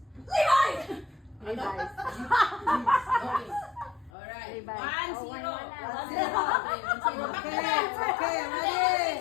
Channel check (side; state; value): right; drops out; at 4.1 s